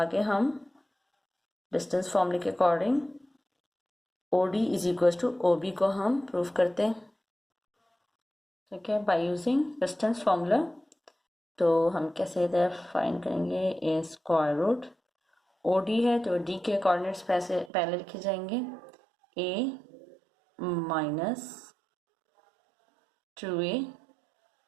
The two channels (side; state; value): left; drops out; at 17.7 s